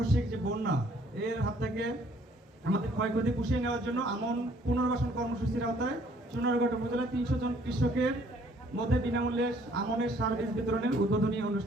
যে বন্যা, এর হাত থেকে আমাদের ক্ষয়ক্ষতি পুষিয়ে নেওয়ার জন্য আমন পুনর্বাসন কর্মসূচির আওতায় চুনারঘাট উপজেলায় 300 জন কৃষকের মধ্যে বিনামূল্যে আমনের সার বীজ বিতরণের উদ্বোধনী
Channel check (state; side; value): normal; both; correlation 0.61